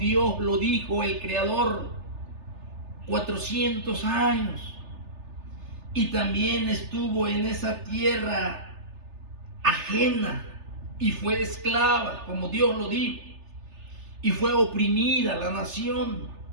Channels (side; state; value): left; late; 3.3 ms